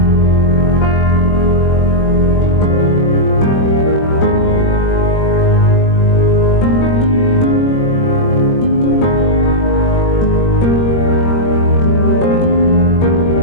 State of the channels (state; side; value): late; right; 21 ms